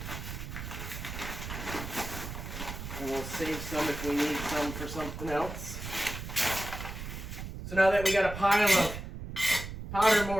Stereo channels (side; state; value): right; noise; rumble, 8 dB below the sound